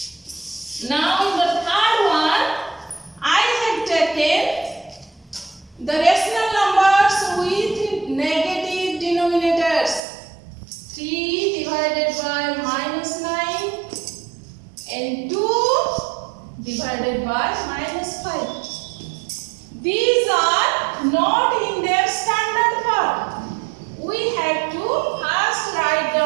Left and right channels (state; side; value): drops out; left; at 10.0 s